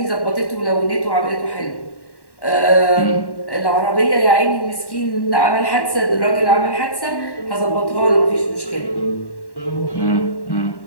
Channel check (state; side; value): late; right; 1.1 ms